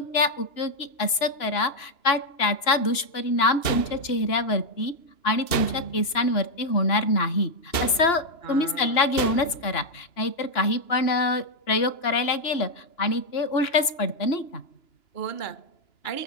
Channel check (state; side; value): late; right; 2.9 ms